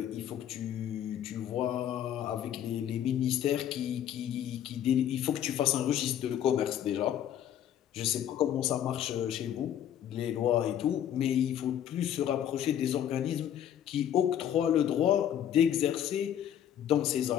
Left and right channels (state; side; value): quieter; right; 10.3 dB